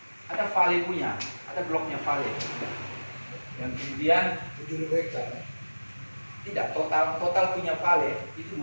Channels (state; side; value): inverted; both; correlation -1.00